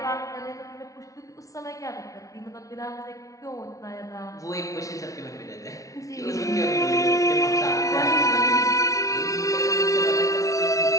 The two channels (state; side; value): late; right; 0.16 ms